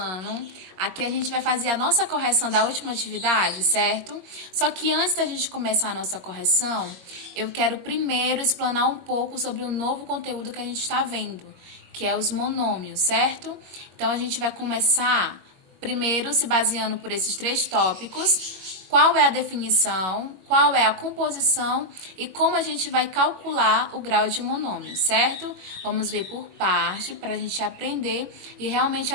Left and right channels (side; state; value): left; late; 22 ms